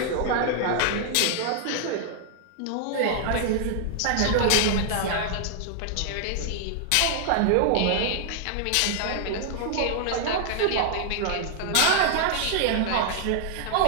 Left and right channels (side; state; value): both; different; correlation 0.00